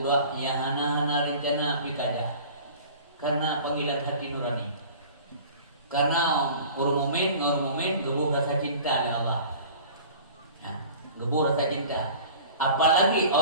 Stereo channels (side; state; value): both; inverted; correlation -0.43